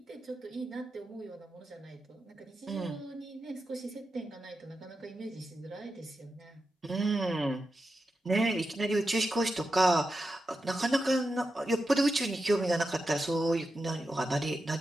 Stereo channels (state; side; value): normal; both; correlation 0.89